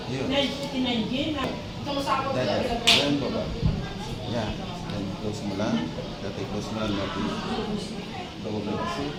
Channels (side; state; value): both; identical; correlation 1.00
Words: Yun. Then baba. Yeah. Then close mo lang. Dati close mo lang natin. Baba kasi.